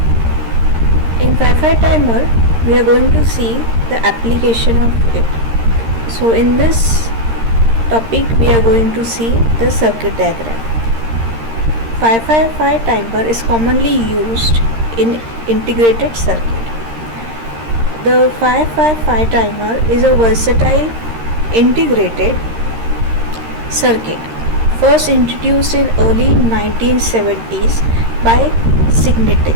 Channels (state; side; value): late; left; 13 ms